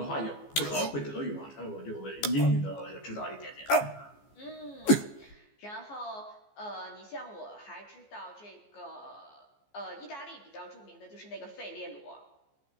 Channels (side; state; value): right; late; 14 ms